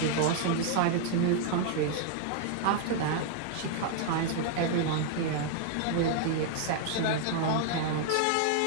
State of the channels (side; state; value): both; different; correlation 0.00